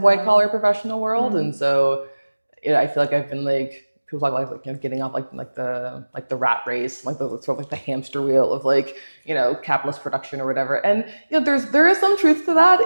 white collar professional world. And so I feel like I've been like, people talk like getting off like the rat race, like the sort of like the hamster wheel of like, capitalist production or whatever. And there is some truth to that.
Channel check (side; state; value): both; inverted; correlation -1.00